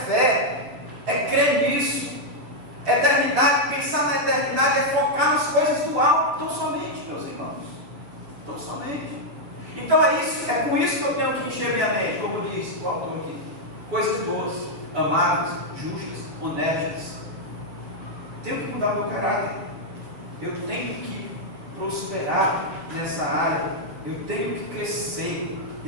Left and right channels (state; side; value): late; left; 6.8 ms